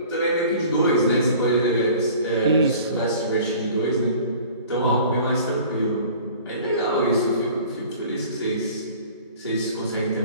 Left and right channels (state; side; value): inverted; both; correlation -0.46